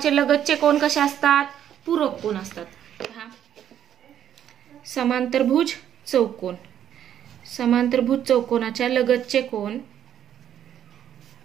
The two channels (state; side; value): quieter; left; 10.0 dB